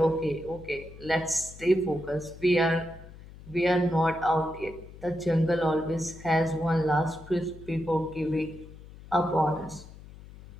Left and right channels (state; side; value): noise; left; hum, 18 dB below the sound